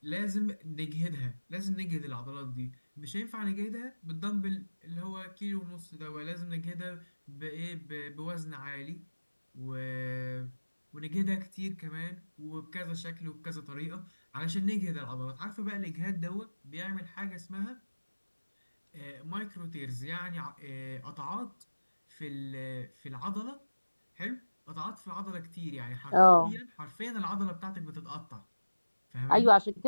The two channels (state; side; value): inverted; both; correlation -1.00